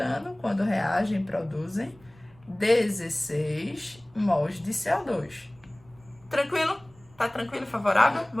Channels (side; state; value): right; noise; rumble, 28 dB below the sound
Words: quando reagem, produzem 16 mols de CO2. Tranquilo? Tá tranquilo, favorável?